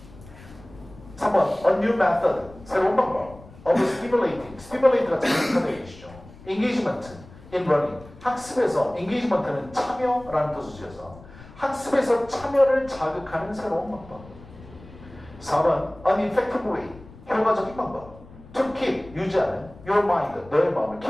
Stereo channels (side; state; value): left; noise; rumble, 20 dB below the sound